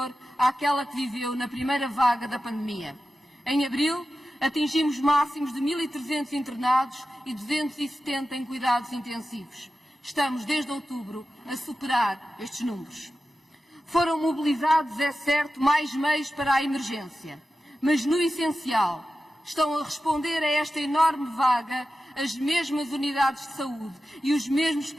àquela que viveu na primeira vaga da pandemia. Em abril, atingimos máximos de 1.300 internados e 270 em cuidados intensivos. Estamos, desde outubro, a superar estes números. Foram mobilizados, é certo, mais meios para a emergência, mas no essencial estão a responder a esta enorme vaga as mesmas unidades de saúde e os mesmos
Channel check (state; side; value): normal; both; correlation 0.93